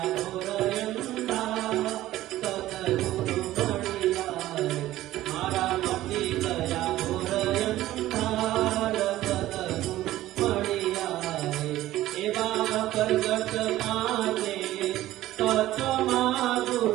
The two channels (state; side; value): quieter; left; 15.0 dB